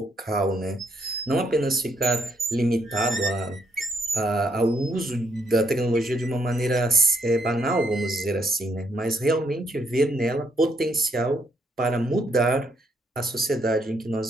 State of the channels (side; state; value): both; normal; correlation 0.74